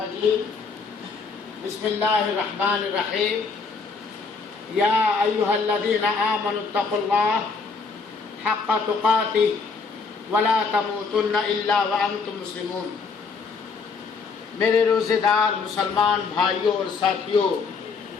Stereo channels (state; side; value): quieter; right; 4.8 dB